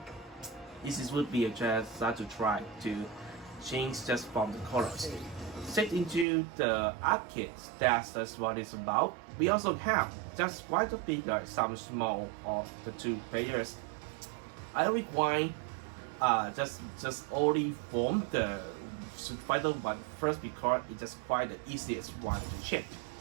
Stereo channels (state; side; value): drops out; left; at 6.2 s